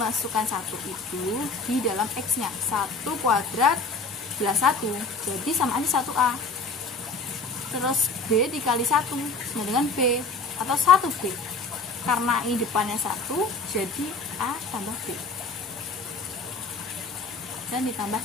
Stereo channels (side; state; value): right; quieter; 3.6 dB